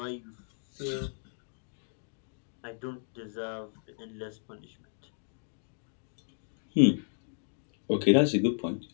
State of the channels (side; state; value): right; silent; digital silence